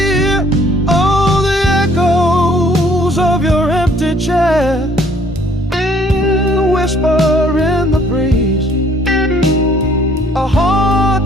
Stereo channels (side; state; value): both; normal; correlation 0.60